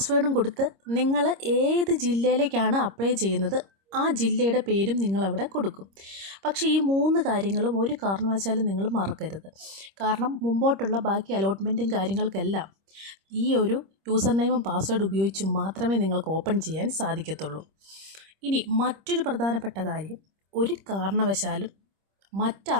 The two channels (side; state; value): left; late; 26 ms